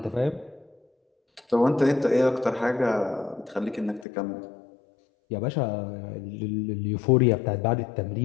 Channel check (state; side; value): drops out; right; at 4.0 s